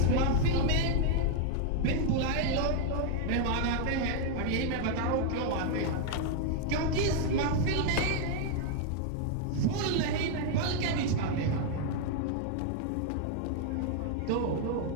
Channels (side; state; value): both; different; correlation 0.00